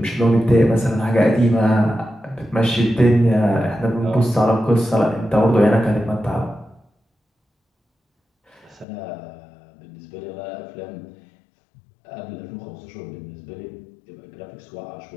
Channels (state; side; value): drops out; right; at 8.8 s